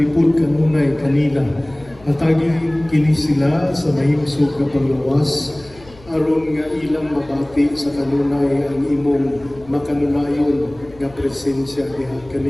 kanunay kanila atagi kini sila sa mahimsog nga panglawas aron nga ilang mabati sa kanunay ang imong makanunayon nga presensya diha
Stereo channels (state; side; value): noise; left; hum, 23 dB below the sound